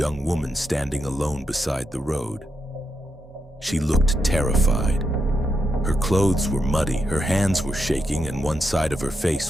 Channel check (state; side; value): normal; both; correlation 0.83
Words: woman standing alone beside the road. She looked terrified. Her clothes were muddy, her hands were shaking, and one side of her